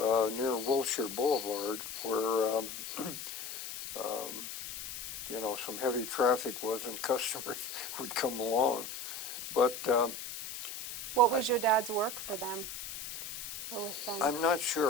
near Wilshire Boulevard, where um, you know, some heavy traffic was and customers would come along. But What was your dad's work for them? Or with them? I'm not sure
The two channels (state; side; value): noise; left; hiss, 8 dB below the sound